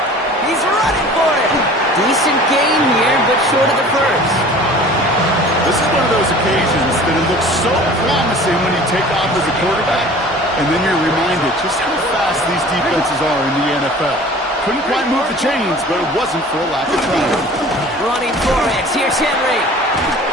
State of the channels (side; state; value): both; normal; correlation 0.45